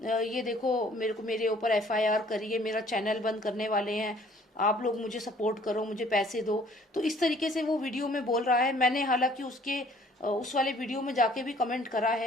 ये देखो मेरे ऊपर FIR करिए, मेरा चैनल बंद करने वाले हैं, आप लोग मुझे सपोर्ट करो, मुझे पैसे दो। तो इस तरीके से वो वीडियो में बोल रहा है। मैंने हालांकि उसके उस वाले वीडियो में जाके भी कमेंट करा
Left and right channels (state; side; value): normal; both; correlation 0.57